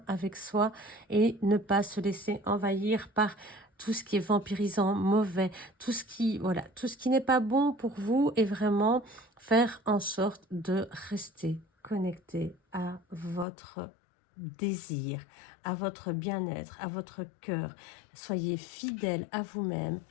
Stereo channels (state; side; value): drops out; right; at 13.5 s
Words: avec soi et ne pas se laisser envahir par tout ce qui est vampirisant, mauvais, tout ce qui n'est pas bon pour vous, et vraiment faire en sorte de rester connecté à votre désir, à votre bien-être, à votre cœur. Soyez fidèle à vous-même